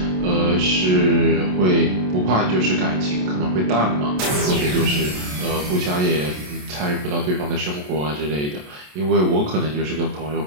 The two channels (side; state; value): left; late; 27 ms